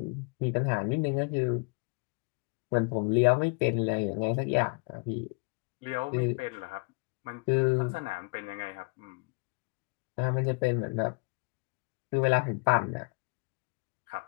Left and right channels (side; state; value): right; quieter; 32.6 dB